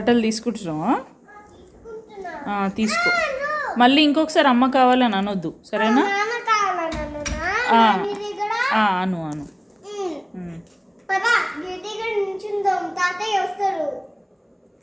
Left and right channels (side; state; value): both; identical; correlation 1.00